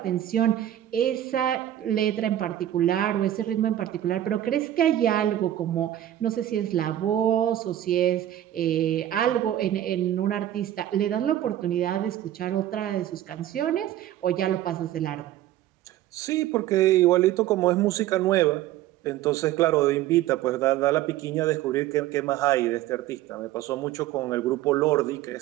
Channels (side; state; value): left; quieter; 12.6 dB